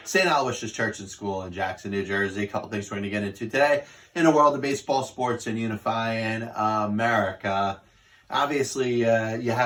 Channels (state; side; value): identical; both; correlation 1.00